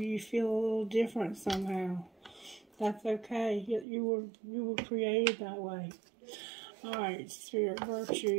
you feel a little different somehow. That's okay. You were created that way. Alright, Spirit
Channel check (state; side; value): drops out; left; at 3.9 s